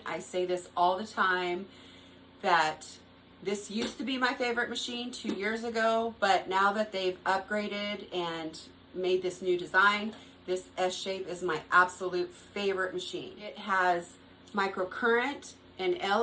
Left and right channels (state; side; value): identical; both; correlation 1.00